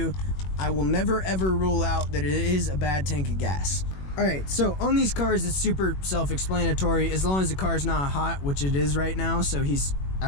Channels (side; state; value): right; late; 21 ms